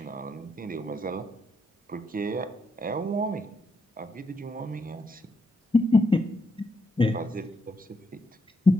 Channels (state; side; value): normal; both; correlation 0.79